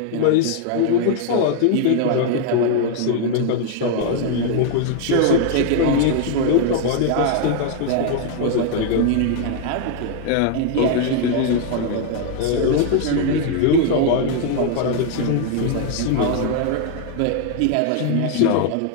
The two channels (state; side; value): different; both; correlation 0.00